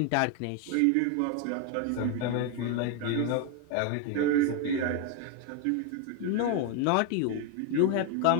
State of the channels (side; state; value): both; different; correlation 0.01